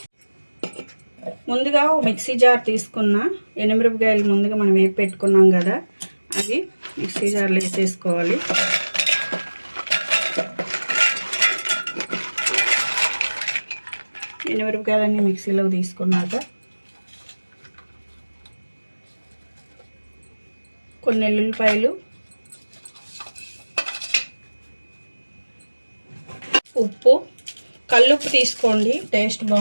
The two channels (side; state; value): both; inverted; correlation -1.00